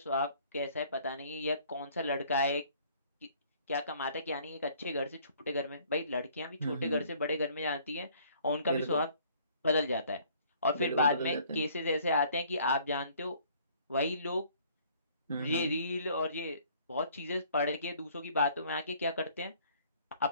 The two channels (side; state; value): both; inverted; correlation -0.58